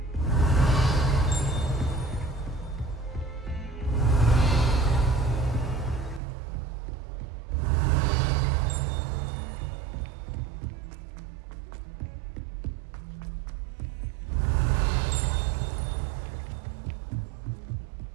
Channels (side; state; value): left; drops out; at 6.2 s